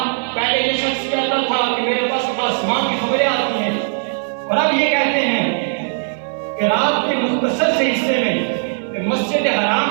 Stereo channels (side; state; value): left; silent; digital silence